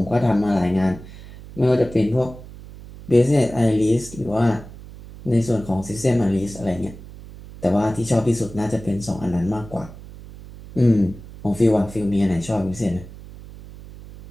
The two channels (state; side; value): noise; right; hum, 16 dB below the sound